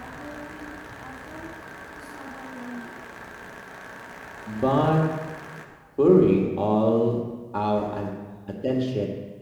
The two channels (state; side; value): identical; both; correlation 1.00